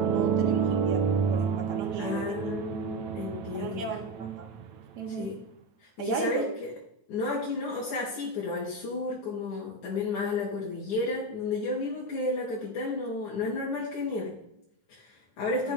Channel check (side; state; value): right; late; 9.6 ms